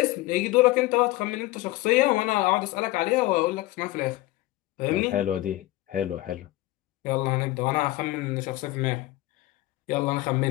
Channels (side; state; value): right; quieter; 18.3 dB